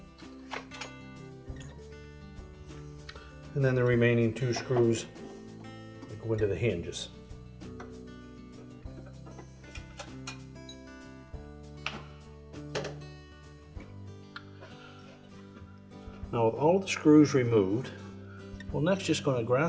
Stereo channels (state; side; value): identical; both; correlation 1.00